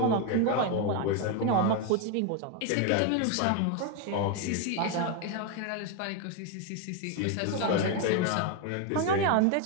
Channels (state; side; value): different; both; correlation 0.02